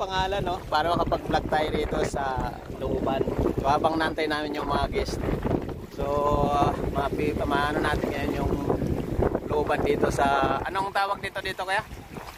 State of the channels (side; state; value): both; identical; correlation 1.00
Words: no? Para makapag-vlog tayo rito sa looban. So, habang nantay namin yung mga guest. So, maano natin ngayon yung looban dito sa, anong tawag dito kuya?